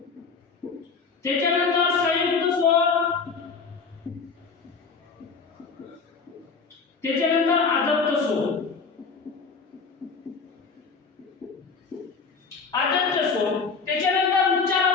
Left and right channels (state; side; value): quieter; right; 5.0 dB